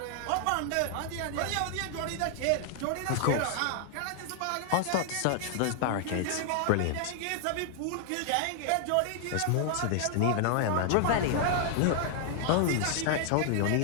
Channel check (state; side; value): different; both; correlation 0.00